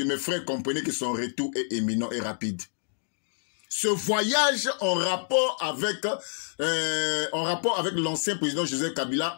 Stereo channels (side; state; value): right; silent; digital silence